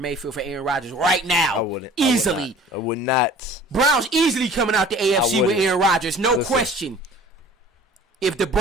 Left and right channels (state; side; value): normal; both; correlation 0.47